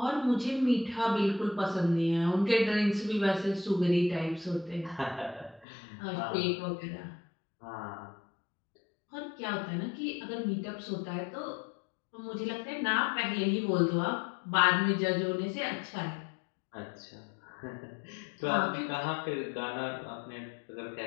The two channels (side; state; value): right; drops out; at 5.7 s